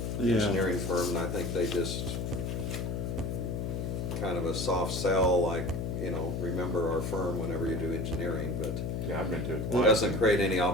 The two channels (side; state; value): left; noise; hum, 2 dB below the sound